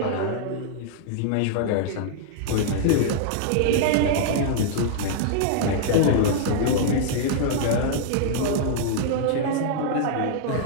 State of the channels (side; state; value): both; different; correlation -0.01